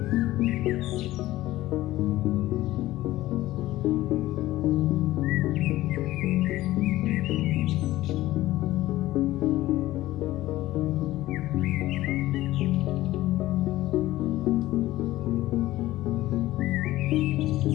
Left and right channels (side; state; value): right; quieter; 16.2 dB